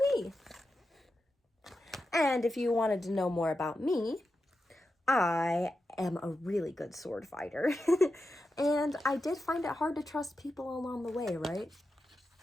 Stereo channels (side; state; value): both; normal; correlation 0.89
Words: And if you wanted to know more about me, I am a really good sword fighter. And I did find it hard to trust people along the way, right?